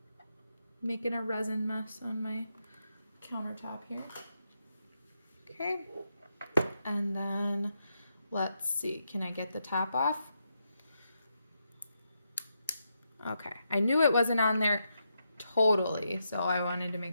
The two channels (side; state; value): both; inverted; correlation -0.83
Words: making a resin mess on my countertop here. Okay, and then let's see, can I get the top off? Okay, I knew it wasn't on there totally, so I wanted to